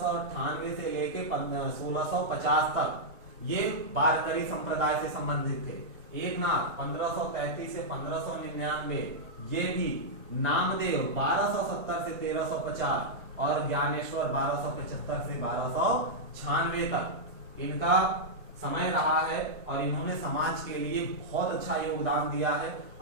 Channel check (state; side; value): normal; both; correlation -0.08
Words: से लेके 1650 तक ये वारकरी संप्रदाय से संबंधित थे। एकनाथ 1533 से 1599, ये भी। नामदेव 1270 से 1350 और ज्ञानेश्वर 1275 से 1296 तक इनका समय रहा है। और इन्होंने समाज के लिए बहुत अच्छा योगदान दिया है,